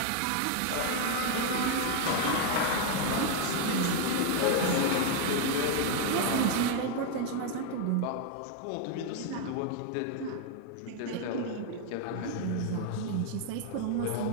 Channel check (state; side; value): different; both; correlation 0.01